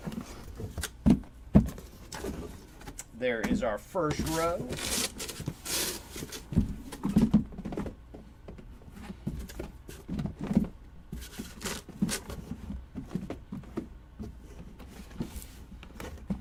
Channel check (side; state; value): both; identical; correlation 1.00